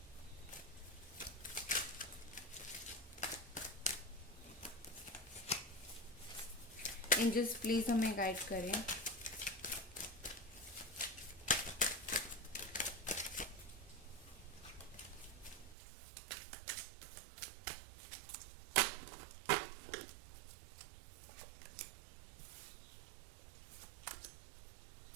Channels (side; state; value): left; drops out; at 15.8 s